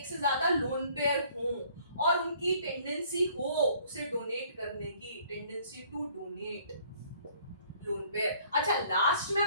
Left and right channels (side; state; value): both; inverted; correlation -0.59